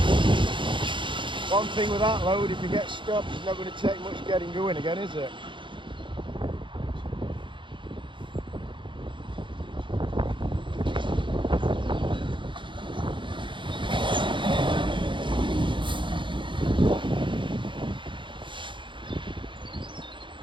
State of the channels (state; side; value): late; left; 0.24 ms